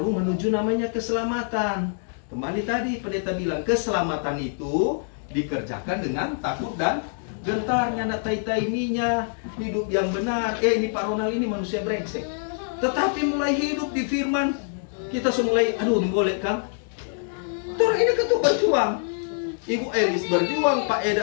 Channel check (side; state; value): right; silent; digital silence